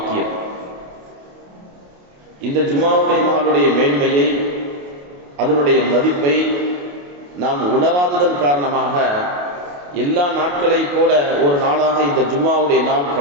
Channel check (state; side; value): late; left; 28 ms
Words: இந்த ஜும்மாவுடைய நாளுடைய மேன்மையை, அதனுடைய மதிப்பை நாம் உணராததன் காரணமாக எல்லா நாட்களை போல ஒரு நாளாக இந்த ஜும்மாவுடைய நாள்